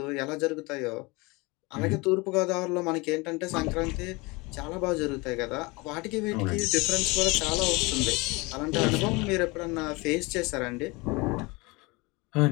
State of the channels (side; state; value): right; quieter; 25.4 dB